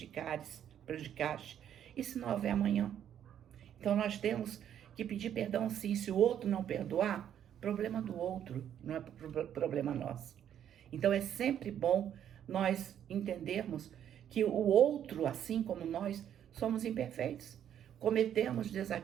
E se não houver amanhã? Então nós temos que pedir perdão sim. Se o outro não perdoar, problema do outro, não é problema nosso. Então é sempre bom nós entendermos que o outro, assim como nós, somos imperfeitos. Cometemos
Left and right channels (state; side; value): quieter; left; 9.9 dB